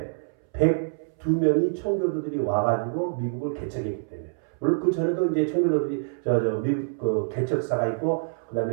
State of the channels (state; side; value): silent; left; 61 dB below the other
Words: 102명이 청교도들이 와가지고 미국을 개척했기 때문에. 물론 그 전에도 이제 청교도들이 미국 그 개척사가 있고, 그